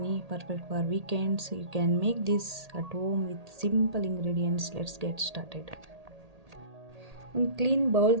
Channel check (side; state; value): left; late; 1.8 ms